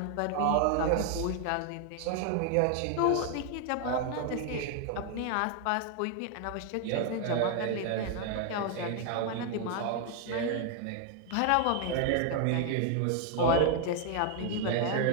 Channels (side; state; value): both; different; correlation 0.00